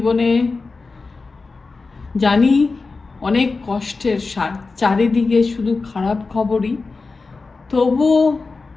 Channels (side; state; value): right; quieter; 4.0 dB